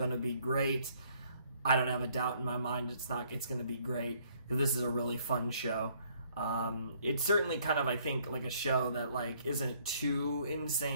to be great. I don't have a doubt in my mind it's going to be great, because this is a really fun show. It's certainly kind of, I think, like a show that like isn't too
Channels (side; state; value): both; inverted; correlation -0.64